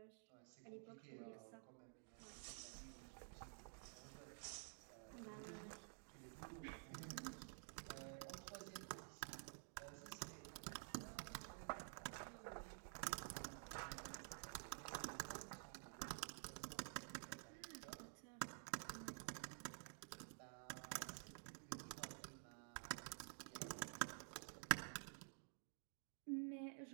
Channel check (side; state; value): left; silent; digital silence